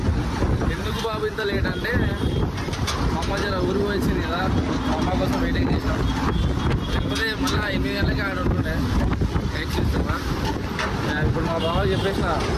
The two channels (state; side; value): identical; both; correlation 1.00